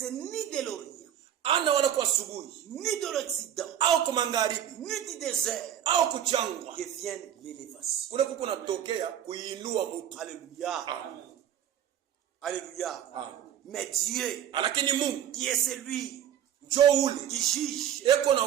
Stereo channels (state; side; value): quieter; left; 10.2 dB